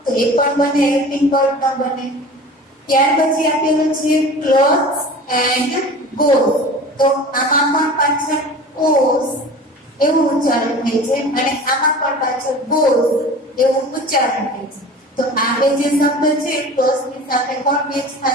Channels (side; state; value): both; normal; correlation 0.39